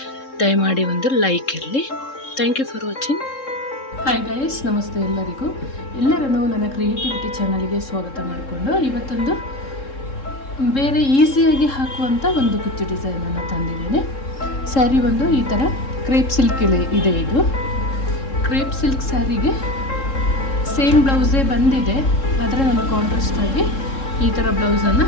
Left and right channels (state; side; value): late; right; 3.7 ms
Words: ದಯಮಾಡಿ ಒಂದು ಲೈಕ್ ಇರಲಿ. Thank you for watching. Hi guys, ನಮಸ್ತೆ ಎಲ್ಲರಿಗೂ. ಎಲ್ಲರನ್ನೂ ನನ್ನ ಕ್ರಿಯೇಟಿವಿಟಿ ಚಾನಲ್ಗೆ ಸ್ವಾಗತ ಮಾಡಿಕೊಂಡು ಇವತ್ತೊಂದು ಬೇರೆ ಈಸಿಯಾಗಿ ಹಾಕುವಂಥ ಒಂದು ಕುಚ್ಚು ಡಿಸೈನನ್ನು ತಂದಿದ್ದೇನೆ. ಸ್ಯಾರಿ ಒಂದು ಈ ಥರ ಕ್ರೇಪ್ ಸಿಲ್ಕ್ ಇದೆ. ಇದು ಕ್ರೇಪ್ ಸಿಲ್ಕ್ ಸ್ಯಾರಿಗೆ ಸೇಮ್ ಬ್ಲೌಸೇ ಬಂದಿದೆ, ಆದರೆ ನಾನು ಕಾಂಟ್ರಾಸ್ಟಾಗಿ ಈ ಥರ ಬ್ಲೌಸನ್ನು